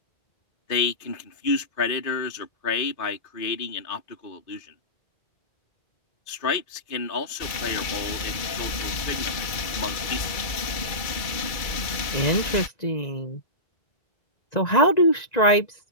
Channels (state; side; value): late; right; 2.3 ms